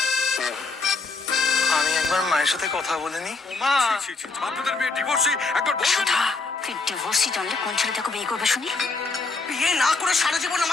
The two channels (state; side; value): quieter; right; 3.8 dB